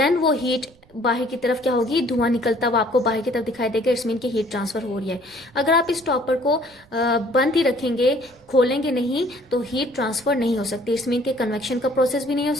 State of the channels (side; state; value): right; noise; rumble, 29 dB below the sound